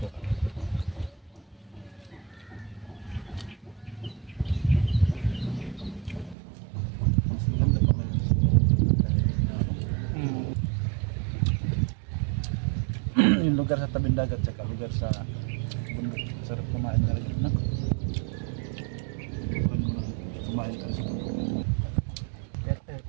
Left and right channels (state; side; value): drops out; left; at 6.4 s